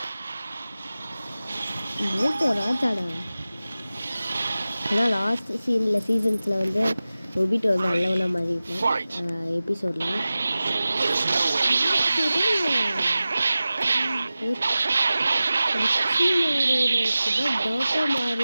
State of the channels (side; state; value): both; inverted; correlation -0.96